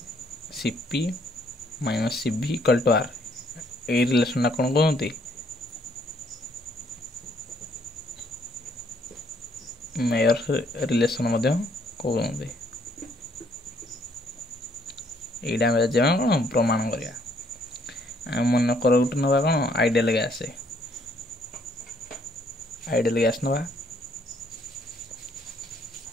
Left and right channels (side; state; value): both; normal; correlation 0.67